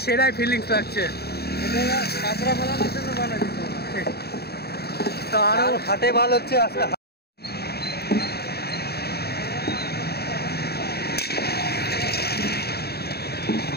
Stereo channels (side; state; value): right; late; 0.46 ms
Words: সেরাই ফিলিংস লাগছে। তো আরো হাটে ভালো হচ্ছে আজকে।